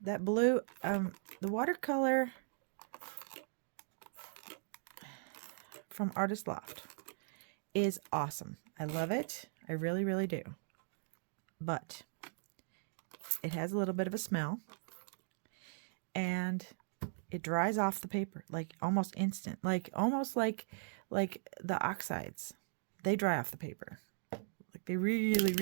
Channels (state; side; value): silent; left; digital silence